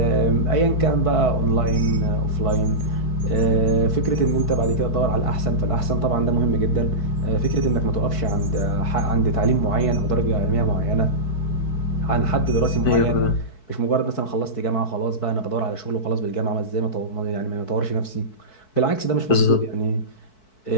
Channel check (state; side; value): late; right; 4.6 ms